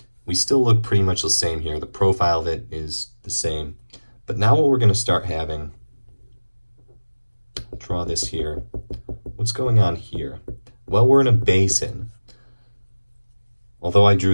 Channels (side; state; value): both; inverted; correlation -1.00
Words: We still look pretty much the same here. The profile of it is the same. But now what we're going to start having, I'll draw this here. What's going on here? Well, we're in a basin. Although I